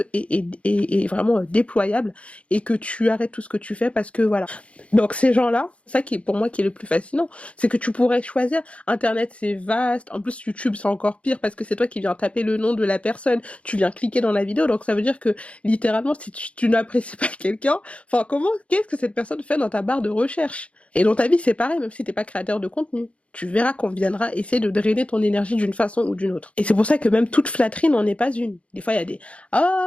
et vraiment déployable, et que tu arrêtes tout ce que tu fais parce que voilà. Donc ces gens-là, ça qui est pour moi qui est le plus fascinant, c'est que tu pourrais choisir. Internet c'est vaste, en plus YouTube c'est encore pire parce que c'est toi qui viens taper le nom de la personne, tu viens cliquer dans la vidéo, donc ça veut dire que littéralement si tu n'apprécies pas quelqu'un, enfin qu'est-ce que cette personne fait dans ta barre de recherche? Et dans ta vie c'est pareil, même si t'es pas créateur de contenu. Tu verras qu'on viendra essayer de drainer ton énergie d'une façon ou d'une autre. Et c'est pour ça que même toute flatterie n'en est pas une. Des fois, il y a des «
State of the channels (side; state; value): right; late; 0.062 ms